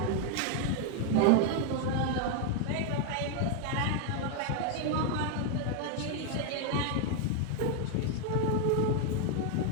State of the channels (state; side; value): different; both; correlation 0.01